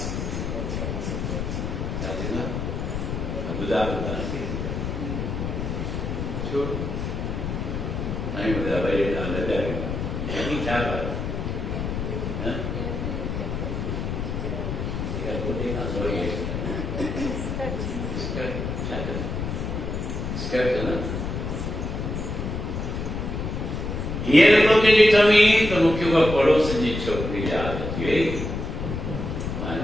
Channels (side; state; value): left; noise; rumble, 3 dB below the sound